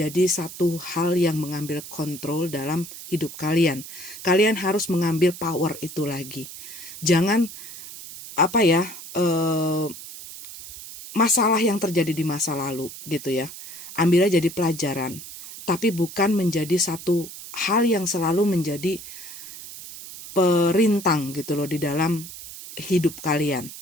satu hal yang mengambil kontrol dalam hidup kalian. Kalian harus mengambil power itu lagi. Jangan masalah yang terjadi di masa lalu gitu ya, ambilnya jadi pelajaran, tapi bukan menjadi satu hal yang selalu menjadi perintang gitu loh di dalam hidup kalian.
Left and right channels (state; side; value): noise; right; hiss, 13 dB below the sound